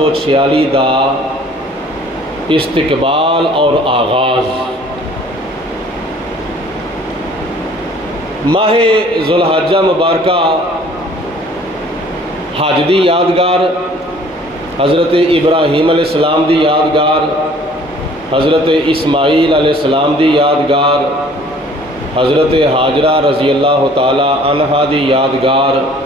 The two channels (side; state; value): both; normal; correlation 0.54